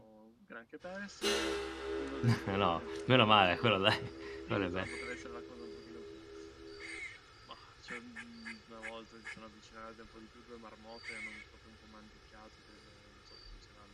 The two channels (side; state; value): both; identical; correlation 1.00